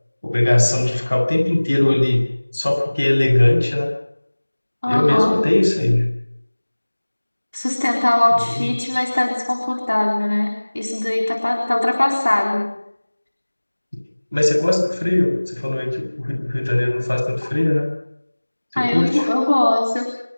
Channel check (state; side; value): inverted; both; correlation -1.00